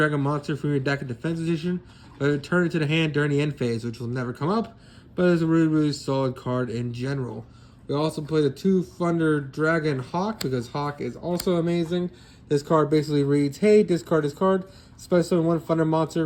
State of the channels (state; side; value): identical; both; correlation 1.00